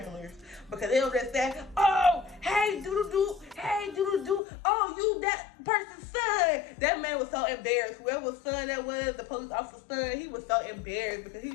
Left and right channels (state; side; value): drops out; right; at 4.4 s